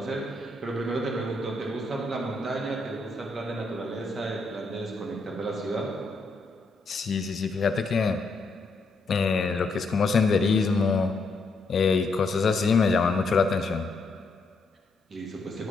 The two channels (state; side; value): quieter; right; 3.4 dB